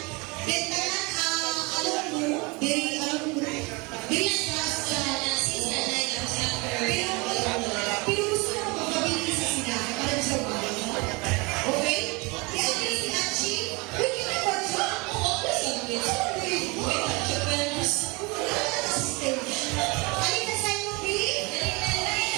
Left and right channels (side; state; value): left; quieter; 27.1 dB